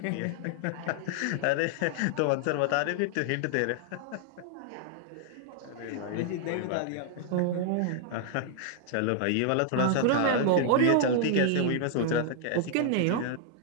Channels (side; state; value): both; different; correlation -0.01